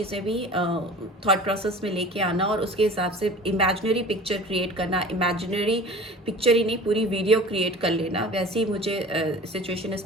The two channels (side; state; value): both; normal; correlation 0.41